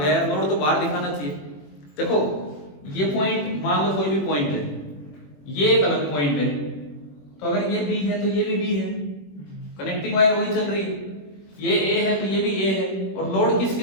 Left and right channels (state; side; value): late; right; 21 ms